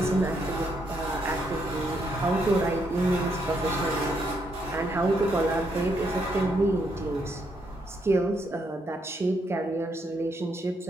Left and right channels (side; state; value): both; normal; correlation 0.76